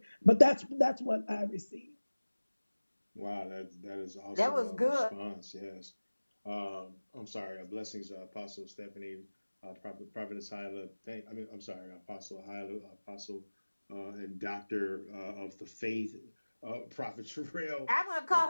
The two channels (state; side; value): inverted; both; correlation -1.00